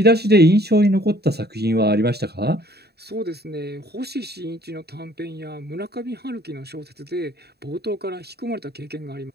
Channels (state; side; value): late; left; 0.47 ms